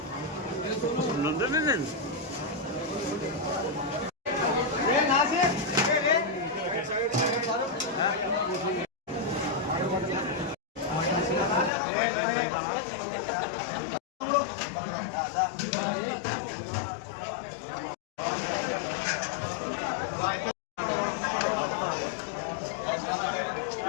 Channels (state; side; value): drops out; right; at 11.7 s